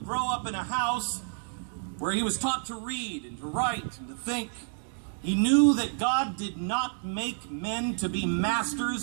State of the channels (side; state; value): left; silent; digital silence